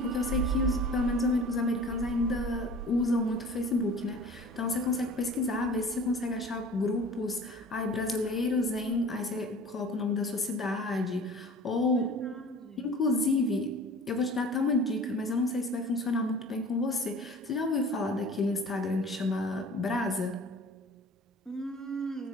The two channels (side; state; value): both; normal; correlation 0.43